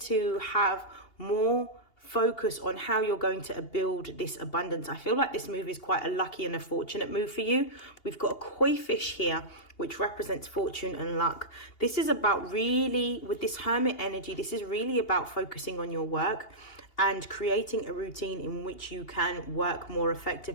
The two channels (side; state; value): right; late; 2.8 ms